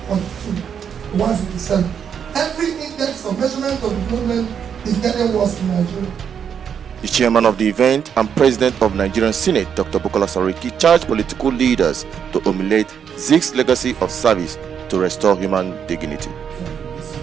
to 157. Every index of measurement of development is getting worse in Nigeria. The chairman of the event and president of Nigerian Senate Dr. Bukola Sakari charged political leaders to emulate Ziks' legacy of service to restore human dignity.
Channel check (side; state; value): left; quieter; 7.7 dB